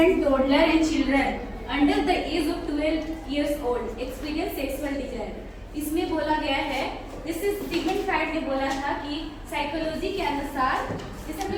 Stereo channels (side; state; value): both; identical; correlation 1.00